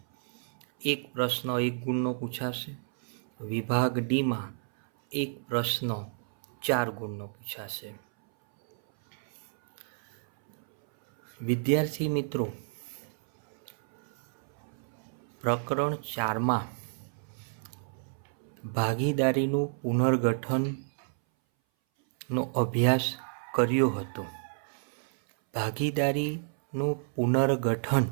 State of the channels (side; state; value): left; silent; 58 dB below the other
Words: એક પ્રશ્ન 1 ગુણનો પૂછાશે, વિભાગ ડીમાં એક પ્રશ્ન 4 ગુણનો પૂછાશે। વિદ્યાર્થી મિત્રો, પ્રકરણ 4માં ભાગીદારીનું પુનર્ગઠનનો અભ્યાસ કર્યો હતો। ભાગીદારીનું પુનર્ગઠન